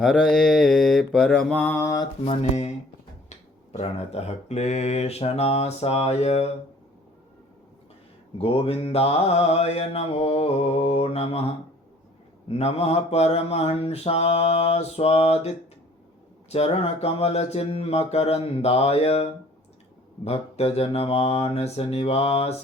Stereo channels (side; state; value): both; normal; correlation 0.54